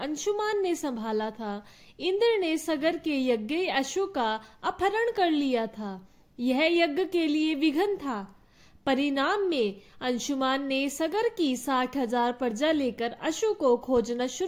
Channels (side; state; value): both; identical; correlation 1.00